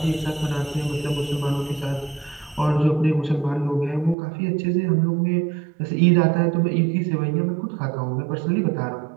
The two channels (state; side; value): drops out; left; at 4.2 s